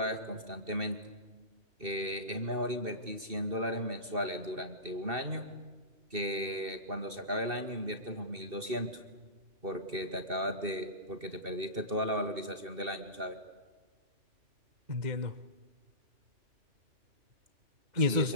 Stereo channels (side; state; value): left; late; 2.7 ms